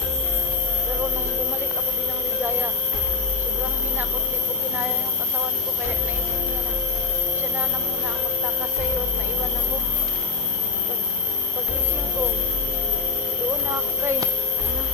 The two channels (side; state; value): right; quieter; 4.5 dB